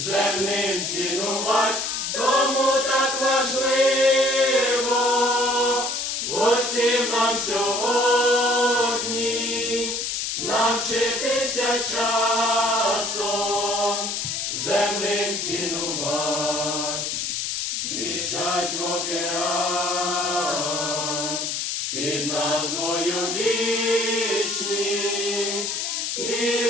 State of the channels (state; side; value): noise; left; hiss, 2 dB below the sound